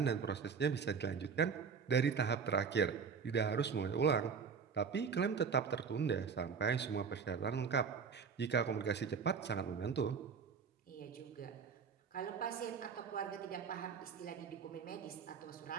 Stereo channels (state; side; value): quieter; left; 6.0 dB